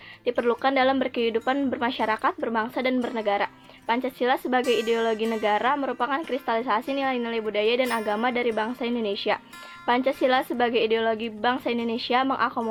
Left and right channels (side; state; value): both; identical; correlation 1.00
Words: diperlukan dalam berkehidupan bermasyarakat, berbangsa, dan bernegara. Pancasila sebagai ideologi negara merupakan kristalisasi nilai-nilai budaya dan agama dari bangsa Indonesia. Pancasila sebagai ideologi bangsa Indonesia